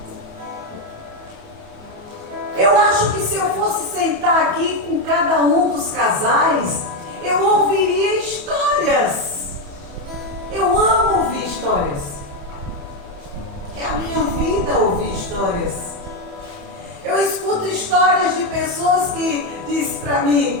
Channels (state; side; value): late; left; 28 ms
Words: Eu acho que se eu fosse sentar aqui com cada um dos casais, eu ouviria histórias. Eu amo ouvir histórias. É a minha vida ouvir histórias. Eu escuto histórias de pessoas que dizem para